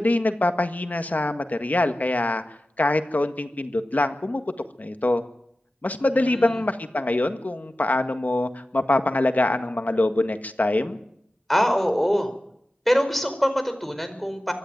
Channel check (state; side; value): normal; both; correlation 0.94